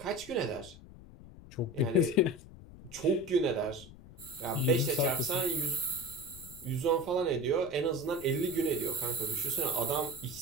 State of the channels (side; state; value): left; noise; rumble, 18 dB below the sound